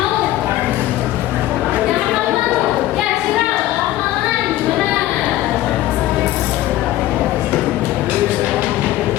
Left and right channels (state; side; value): quieter; right; 14.9 dB